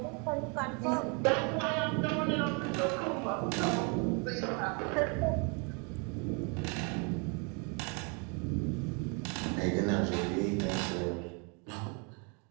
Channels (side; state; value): left; quieter; 34.4 dB